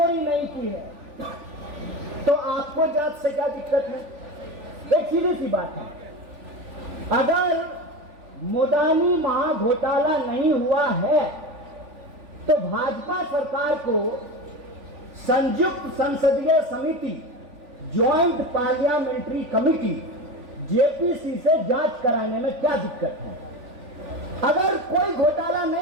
नहीं की है तो आपको जांच से क्या दिक्कत है। एक सीधी सी बात है, अगर मोदानी महाघोटाला नहीं हुआ है तो भाजपा सरकार को संयुक्त संसदीय समिति, ज्वाइंट पार्लियामेंट्री कमिटी जेपीसी से जांच कराने में क्या दिक्कत है। अगर कोई घोटाला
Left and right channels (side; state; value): left; late; 3.5 ms